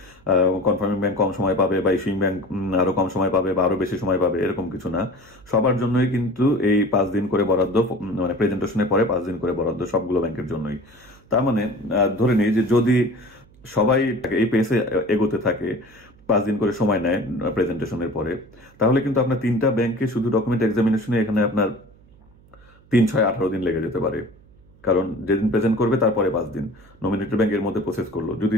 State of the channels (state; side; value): noise; right; hum, 27 dB below the sound